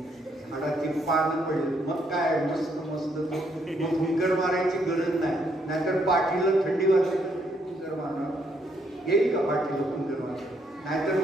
झाडाची पानं पडली. मग काय मस्त मग फुंकर मारायची गरज नाही. नाहीतर पाठीला थंडी वाजते, फुंकर मारणार येईल का? पाठीला फुंकर मारणार नाहीतर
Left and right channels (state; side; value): normal; both; correlation 0.72